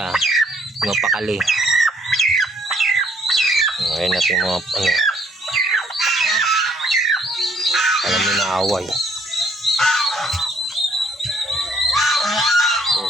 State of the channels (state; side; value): normal; both; correlation 0.64